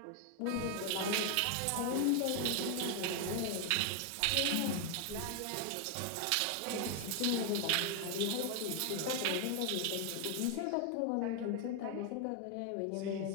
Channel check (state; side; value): different; both; correlation 0.01